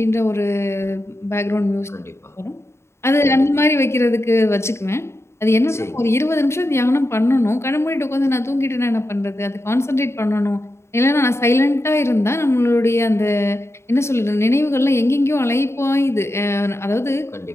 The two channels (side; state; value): right; late; 0.13 ms